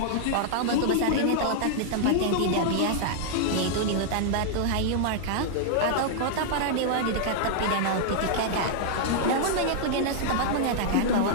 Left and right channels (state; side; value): different; both; correlation -0.01